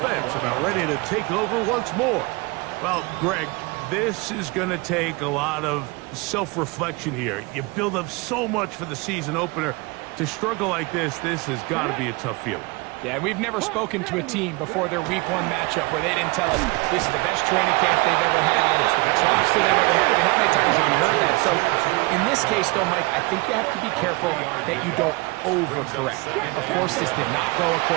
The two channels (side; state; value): left; quieter; 26.0 dB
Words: about ready to take over once more. Well, Greg, this is going to take a lot of self-reflection here. You build up so much for the season opener. To struggle like this has got to be a tough feeling. Yeah, we've never spoken to a team before their week 1 matchup where they didn't tell us this is the best training camp they've ever had, it's the best roster they've ever had. I mean, how many times have we heard that? So in this case, though, Mike, I think you have to be careful that you don't overcorrect. Of course, this did not go